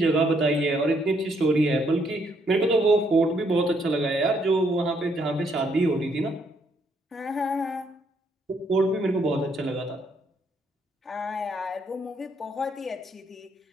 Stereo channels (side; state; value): both; normal; correlation 0.72